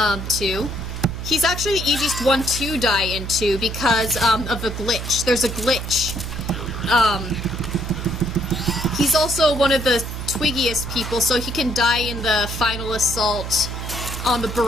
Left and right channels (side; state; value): right; noise; hum, 6 dB below the sound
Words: 2. He's actually the easiest one to die in 2 because, of a glitch. There's a glitch. He's also one of the twiggiest people, so he can die in the final assault on the